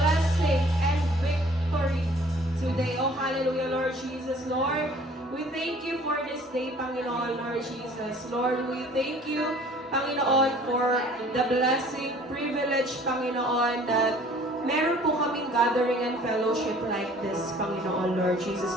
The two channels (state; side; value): normal; both; correlation 0.52